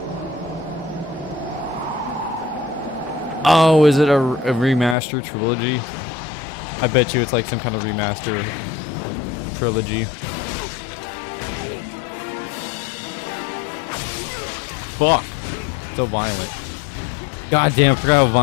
Oh, is it a remaster trilogy? I bet you it's like some kind of remaster trilogy. Fuck. So violent. God damn, I forgot how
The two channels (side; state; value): right; drops out; at 5.0 s